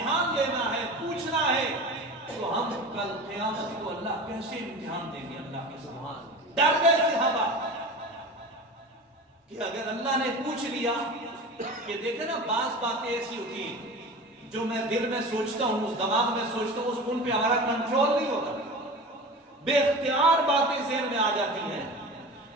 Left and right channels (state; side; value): normal; both; correlation 0.33